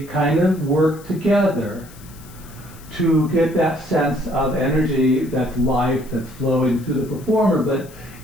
kind of work together to get that sense of energy that's life that's flowing through the performer. But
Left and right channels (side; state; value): left; noise; hiss, 22 dB below the sound